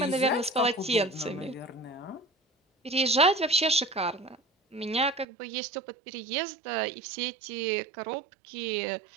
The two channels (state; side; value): drops out; left; at 5.2 s